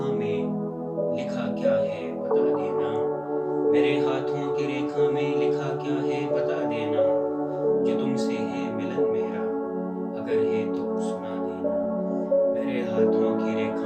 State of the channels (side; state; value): both; identical; correlation 1.00